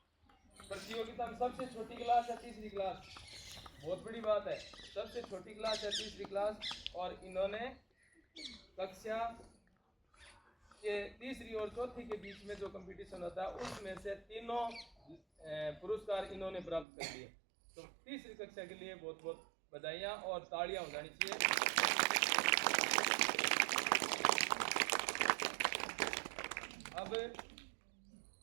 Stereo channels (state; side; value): drops out; left; at 16.9 s